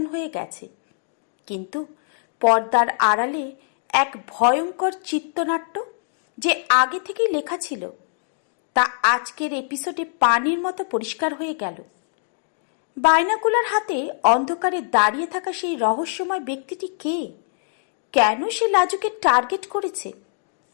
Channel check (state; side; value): silent; right; digital silence